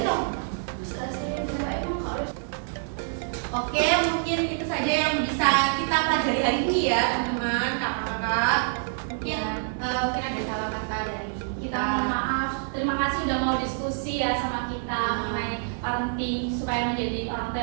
Oke, mungkin itu saja yang bisa kita pelajari hari ini ya teman-teman, kakak-kakak. Mungkin mungkin ada salah kata dari Kita mohon maaf. Terima kasih udah mau diskusi ya sama kita mengenai parenting supaya menjadi orang tua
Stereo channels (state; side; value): silent; left; digital silence